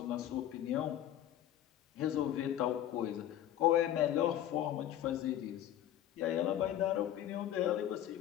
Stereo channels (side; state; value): right; quieter; 11.8 dB